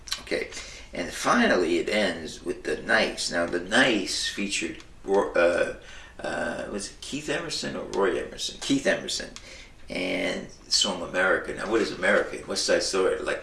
Okay, and finally it ends with The Nice. Now, The Nice featured was it Keith Emerson or Roy Emerson? Keith Emerson. And the song America. Now, what is America? West Side Story.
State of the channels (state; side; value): identical; both; correlation 1.00